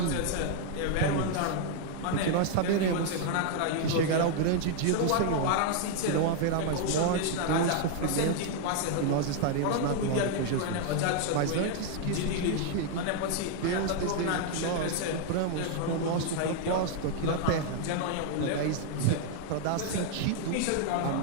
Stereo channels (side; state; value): both; different; correlation 0.00